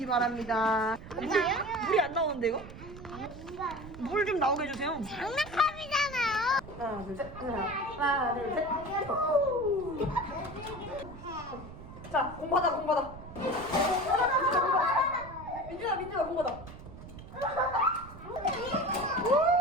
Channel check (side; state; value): right; noise; rumble, 14 dB below the sound